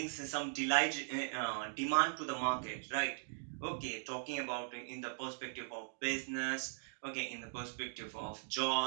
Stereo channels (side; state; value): left; silent; digital silence